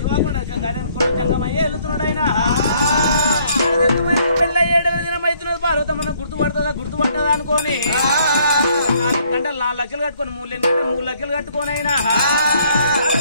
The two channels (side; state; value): both; inverted; correlation -0.64